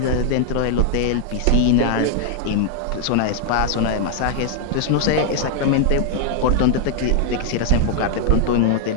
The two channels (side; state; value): both; different; correlation 0.00